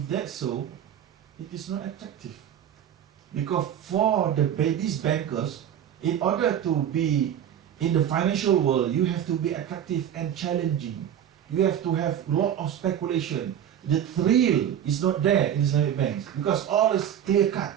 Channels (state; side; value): quieter; left; 9.8 dB